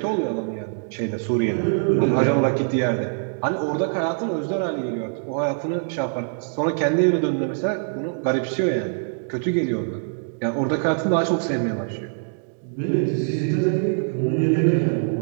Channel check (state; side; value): silent; left; digital silence